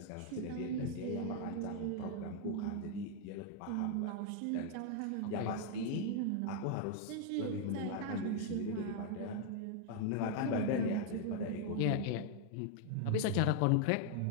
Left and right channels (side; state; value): both; different; correlation 0.00